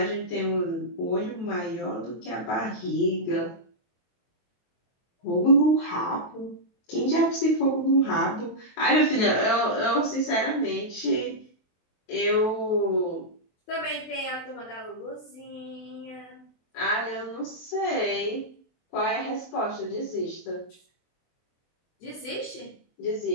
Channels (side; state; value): right; late; 23 ms